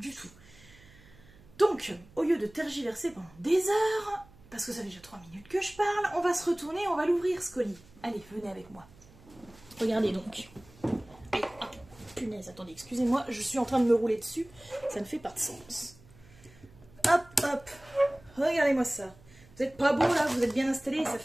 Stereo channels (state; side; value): noise; right; hum, 24 dB below the sound